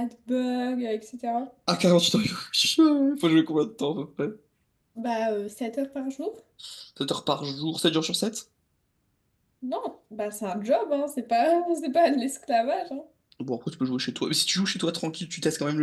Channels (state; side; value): identical; both; correlation 1.00